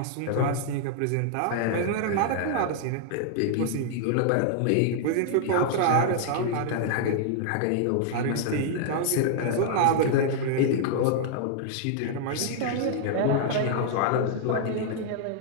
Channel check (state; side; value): different; both; correlation -0.01